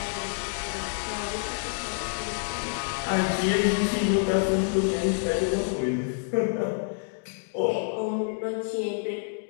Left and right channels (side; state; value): right; silent; digital silence